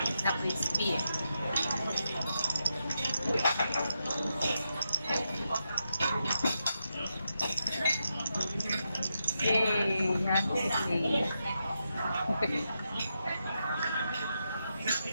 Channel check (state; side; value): inverted; both; correlation -0.86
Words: Na crispy eh. Yay! Happy day.